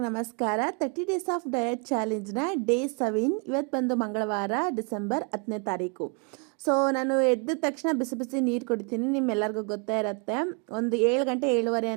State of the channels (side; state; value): left; quieter; 35.0 dB